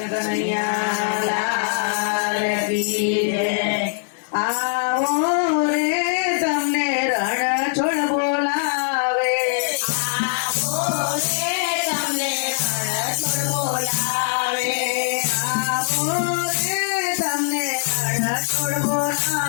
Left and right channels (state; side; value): silent; right; 64 dB below the other